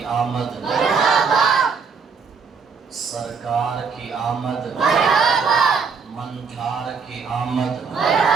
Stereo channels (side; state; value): left; quieter; 5.5 dB